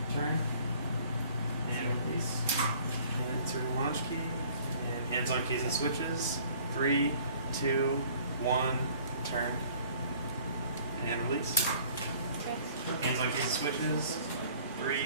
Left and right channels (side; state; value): both; inverted; correlation -0.53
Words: turn. And release. And insert the launch key. And hands on keys and switches. 3, 2, 1, turn. And release. Hands on keys and switches.